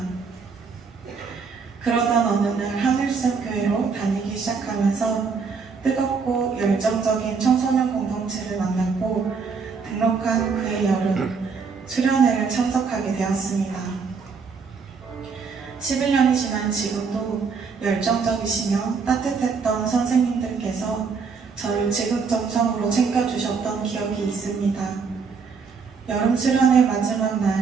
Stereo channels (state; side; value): quieter; left; 5.3 dB